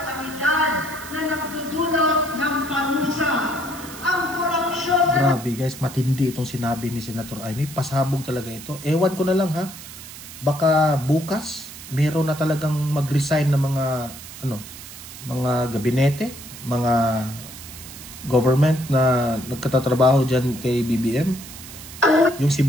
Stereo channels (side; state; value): right; noise; hiss, 14 dB below the sound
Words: na nagdudulot ng panusa, ang korupsyon na Grabe guys, matindi itong sinabi ni Senator Amy. Pasabog talaga ito. Ewan ko na lang ha. Baka bukas meron na talagang mag-resign ng mga gabinete, mga government na nagkatatrabaho dyan kay BBM. Yung si